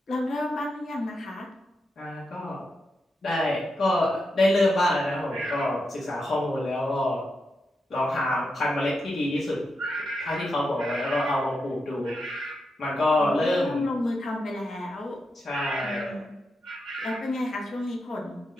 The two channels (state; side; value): normal; both; correlation 0.86